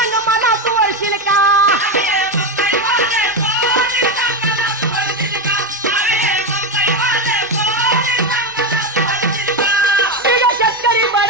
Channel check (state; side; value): normal; both; correlation 0.12